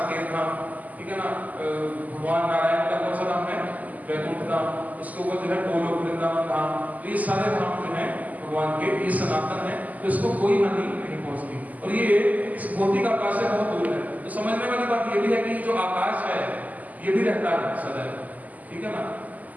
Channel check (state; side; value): late; left; 0.078 ms